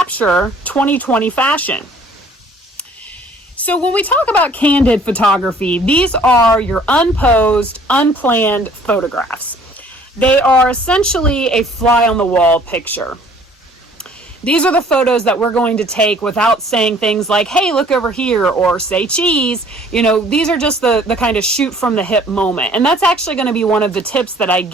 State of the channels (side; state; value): both; normal; correlation 0.56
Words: 2020 fashion. So when we talk about candid photography, these are your unposed, unplanned photographs. They are essentially a fly on the wall picture. These are the photos that we're going to take without saying things like, hey, look over here, or say cheese. These are just the kind of shoot from the hip moment. And that's actually going to be one of the tips that I